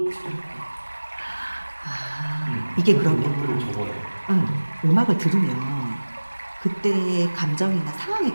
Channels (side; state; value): both; inverted; correlation -1.00